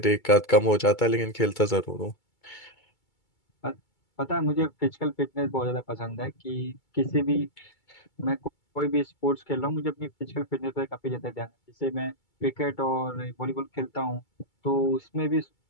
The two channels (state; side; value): late; right; 2.3 ms